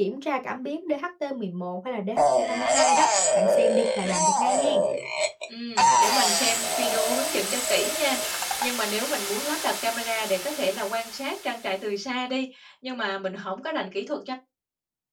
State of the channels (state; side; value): identical; both; correlation 1.00